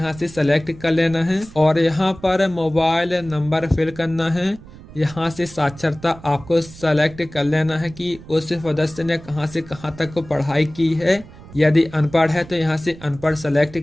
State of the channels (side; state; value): right; noise; rumble, 19 dB below the sound